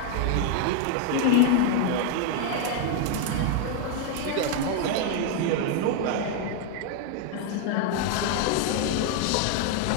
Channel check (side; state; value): both; different; correlation 0.00